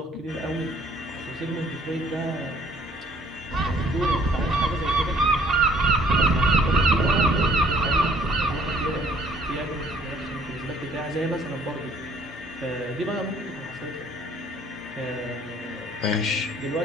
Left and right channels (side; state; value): both; normal; correlation 0.60